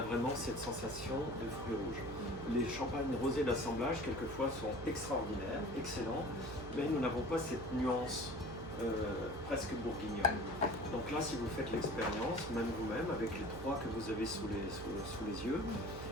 vraiment cette sensation de fruits rouges. Les champagnes rosés d'assemblage, quelquefois, sont extraordinaires, excellents, mais nous n'avons pas cette nuance presque bourguignonne. Donc là, si vous faites l'expérience, même vous-même, avec les 3 que vous avez sous les yeux,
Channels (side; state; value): right; noise; hum, 12 dB below the sound